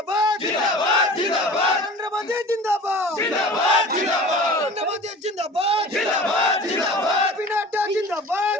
जिंदाबाद जिंदाबाद नरेंद्र मोदी जिंदाबाद जिंदाबाद जिंदाबाद नरेंद्र मोदी जिंदाबाद जिंदाबाद जिंदाबाद पी नड्डा जिंदाबाद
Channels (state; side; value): normal; both; correlation 0.40